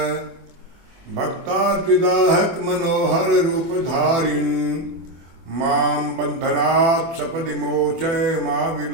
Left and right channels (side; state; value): left; late; 24 ms